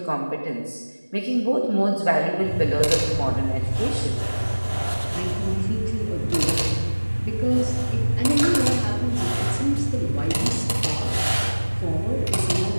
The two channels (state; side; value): inverted; both; correlation -1.00